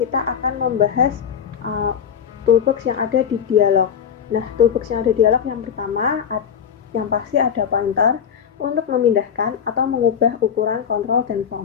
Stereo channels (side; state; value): right; quieter; 7.9 dB